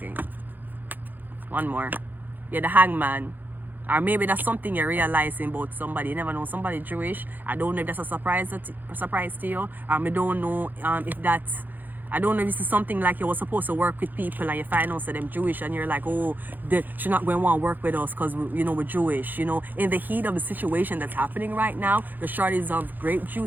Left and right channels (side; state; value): left; late; 0.086 ms